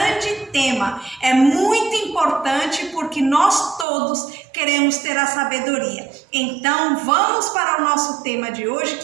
tema! É muito importante porque nós todos queremos ter a sabedoria. Então vamos para o nosso tema de hoje,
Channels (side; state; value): left; drops out; at 3.9 s